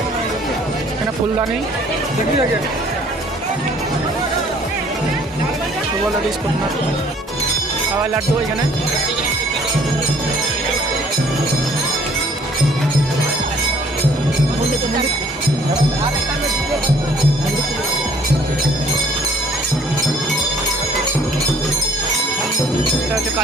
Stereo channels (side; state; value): both; normal; correlation 0.58